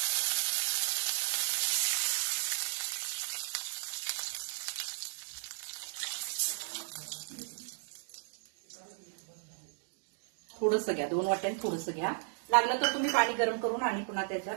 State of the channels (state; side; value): silent; left; digital silence